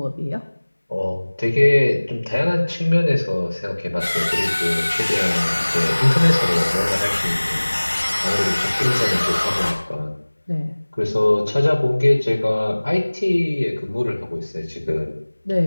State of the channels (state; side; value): inverted; both; correlation -1.00